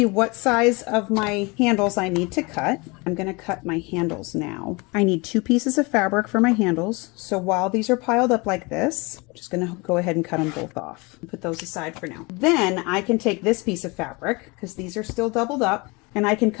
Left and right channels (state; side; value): quieter; right; 26.9 dB